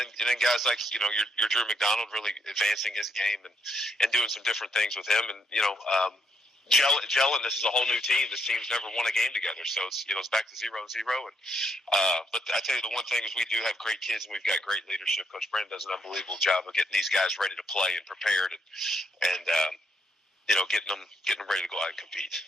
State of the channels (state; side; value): normal; both; correlation 0.76